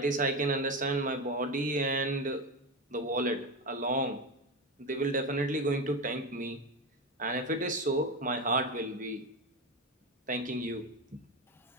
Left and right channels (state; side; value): normal; both; correlation 0.17